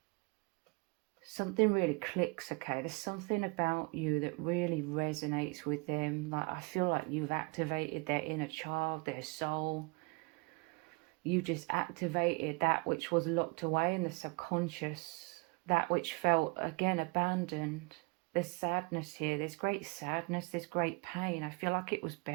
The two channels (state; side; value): quieter; left; 29.5 dB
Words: something really clicks, okay? There's something about you that really resonates with them. Like I feel like you've activated their inner child, their soul. You just activated that which was locked away in the subconscious, that which felt, again, abandoned. There's sadness here. There's great sadness. There's great pain. I feel like it was